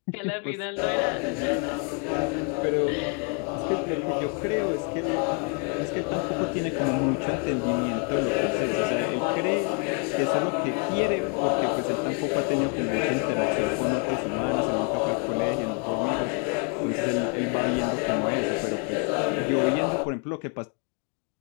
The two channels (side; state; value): right; quieter; 35.5 dB